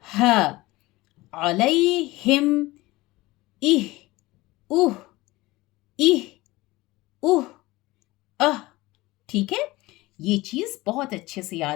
ह, अलैहिम, इह, उह, इह, उह, अह। ठीक है, ये चीज बहुत अच्छे से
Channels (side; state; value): right; quieter; 19.9 dB